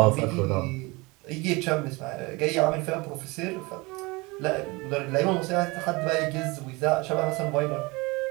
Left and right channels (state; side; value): quieter; left; 24.8 dB